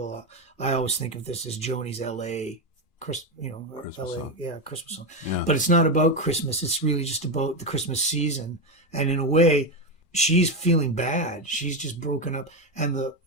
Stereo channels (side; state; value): right; late; 2.4 ms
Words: I always think of this as Joni's L.A. Christmas song. Yeah, Christmas song. Yeah. But it's not about Christmas. It's really just about the Christmas season. And in a way, she's feeling bad. She's just broken up. And the